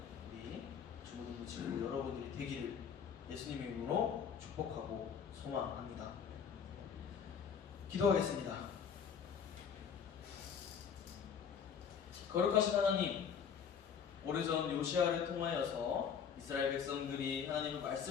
우리 주무동부 친구 여러분들이 되기를 예수님의 이름으로 축복하고 소망합니다. 기도하겠습니다. 거룩하신 하나님, 오래전 요시아를 통하여서 이스라엘 백성들이 하나님의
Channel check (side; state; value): right; quieter; 7.2 dB